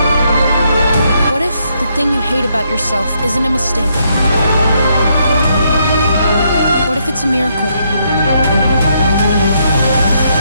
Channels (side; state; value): both; inverted; correlation -0.75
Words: What if the thing you hate about yourself isn't a mistake? What if it's a miracle?